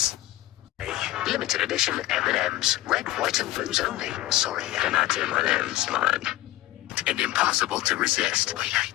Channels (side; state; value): right; quieter; 16.5 dB